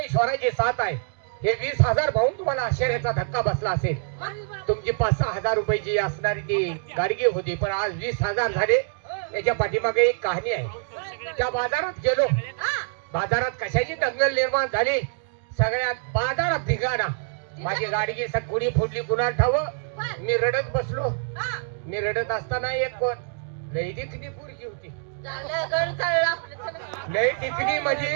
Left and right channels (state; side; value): silent; left; digital silence